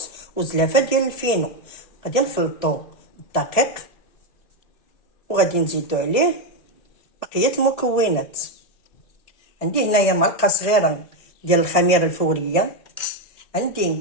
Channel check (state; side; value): late; right; 1.7 ms